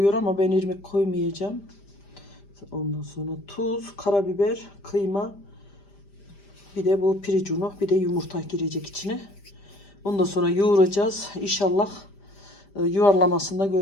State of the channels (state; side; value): late; right; 5.0 ms